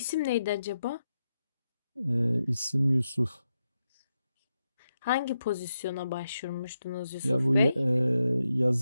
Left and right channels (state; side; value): inverted; both; correlation -0.87